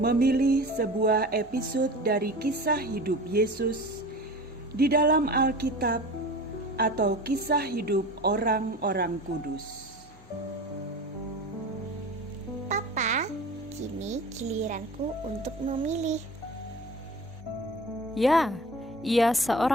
sebuah episode dari kisah hidup Yesus di dalam Alkitab atau kisah hidup orang-orang kudus. Papa, kini giliranku untuk memilih. Ya, ia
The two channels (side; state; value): both; normal; correlation 0.37